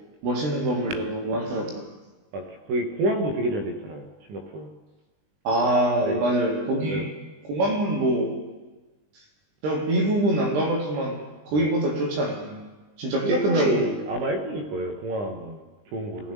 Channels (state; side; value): late; left; 20 ms